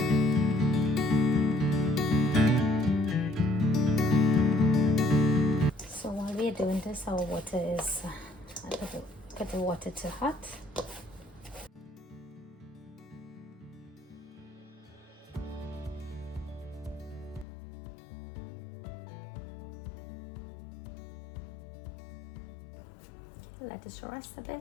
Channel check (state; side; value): drops out; right; at 17.4 s